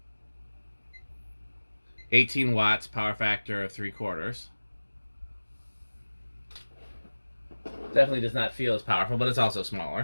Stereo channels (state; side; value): inverted; both; correlation -1.00